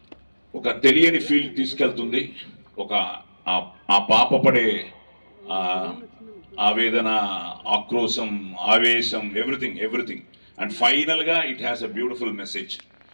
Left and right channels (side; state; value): both; inverted; correlation -1.00